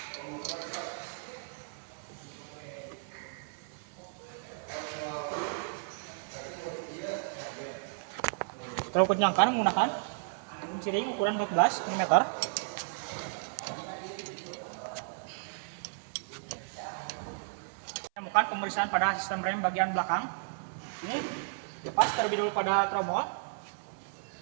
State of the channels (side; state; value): left; silent; 55 dB below the other